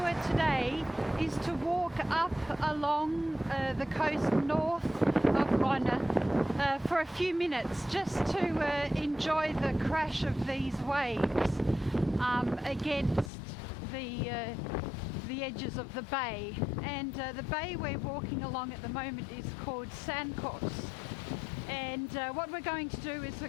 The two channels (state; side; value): drops out; right; at 13.3 s